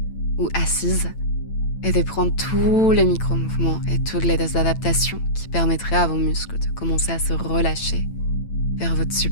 ou assise, et de prendre tous les micro-mouvements et toutes les adaptations qui permettraient à vos muscles de commencer à se relâcher vers votre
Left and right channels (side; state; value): right; late; 8.9 ms